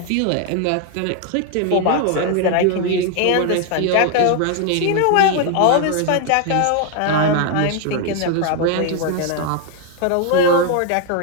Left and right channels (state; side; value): different; both; correlation 0.00